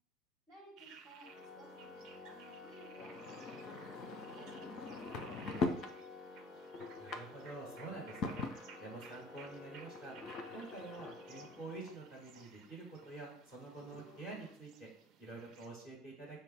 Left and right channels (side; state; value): both; normal; correlation 0.52